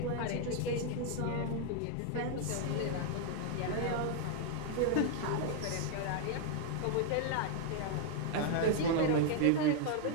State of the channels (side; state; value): both; different; correlation 0.00